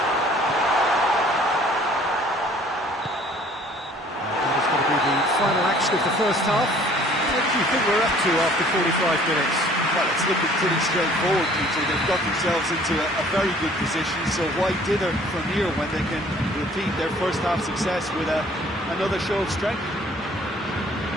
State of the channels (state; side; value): normal; both; correlation 0.55